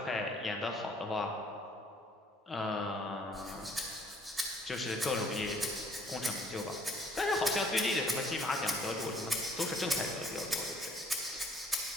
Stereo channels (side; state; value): both; normal; correlation 0.60